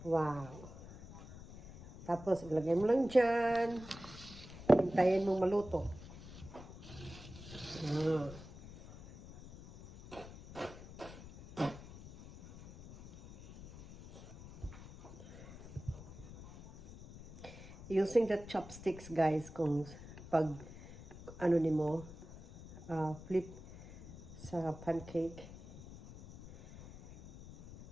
Wow. Tapos, ilagay mo lang dyan. Hintayin mong maluto. Using the chopsticks, guys, kung pag ano ni mo, flip sa pancake.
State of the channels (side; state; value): left; noise; rumble, 16 dB below the sound